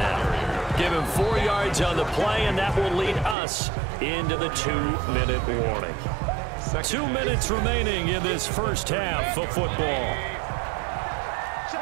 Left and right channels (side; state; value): left; drops out; at 3.4 s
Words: Give him 4 yards on the play, and that will lead us into the 2-minute warning. 2 minutes remaining in this first half of football.